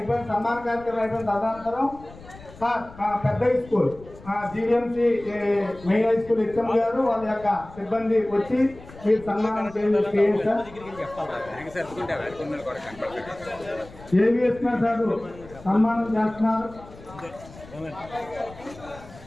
సన్మాన కార్యక్రమం అయిపోయిన తదనంతరం సార్ మా పెద్ద high school GVMC main high school HM గారు వాళ్ళ యొక్క సిబ్బంది వచ్చి మీరు సన్మానం చేయండి సార్. ఏవిఎస్ సార్ సన్మానం చేస్తున్నారు.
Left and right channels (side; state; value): left; noise; rumble, 19 dB below the sound